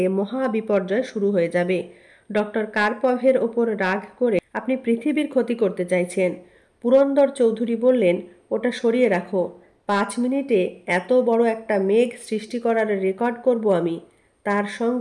মহা বিপর্যয় শুরু হয়ে যাবে। ডক্টর কার্পভের ওপর রাগ করে আপনি পৃথিবীর ক্ষতি করতে চাইছেন। পুরন্দর চৌধুরী বললেন, ওটা সরিয়ে রাখো। 5 মিনিটে এত বড় একটা মেঘ সৃষ্টি করার রেকর্ড করব আমি। তার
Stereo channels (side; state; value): both; identical; correlation 1.00